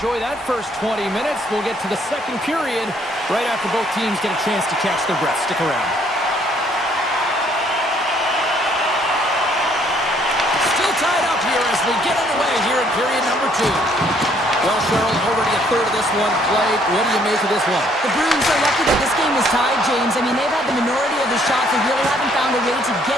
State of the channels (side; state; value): both; normal; correlation 0.65